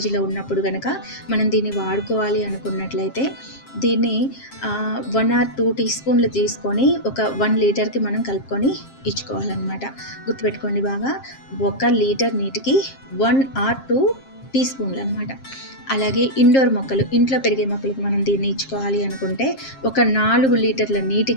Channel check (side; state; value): right; late; 7.5 ms